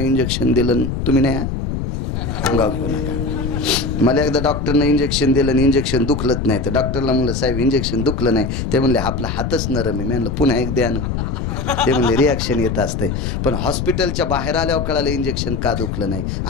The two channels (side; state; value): left; noise; rumble, 3 dB below the sound